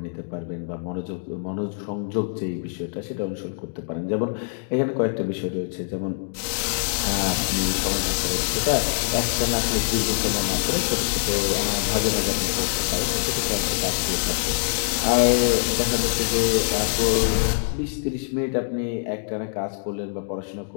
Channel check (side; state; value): right; silent; digital silence